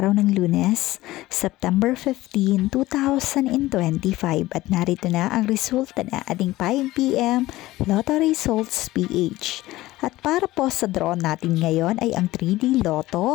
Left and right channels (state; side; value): quieter; right; 17.3 dB